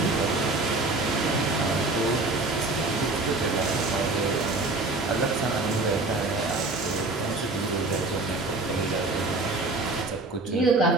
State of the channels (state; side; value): quieter; left; 3.2 dB